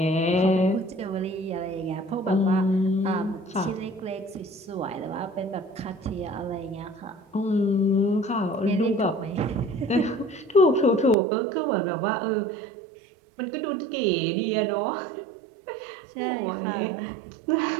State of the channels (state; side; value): drops out; left; at 11.2 s